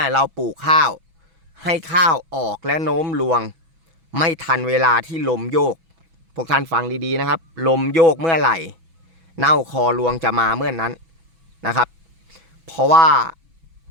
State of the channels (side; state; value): left; late; 6.1 ms